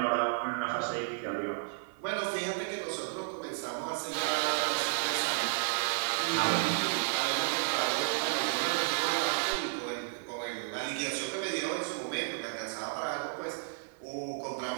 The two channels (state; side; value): silent; left; 56 dB below the other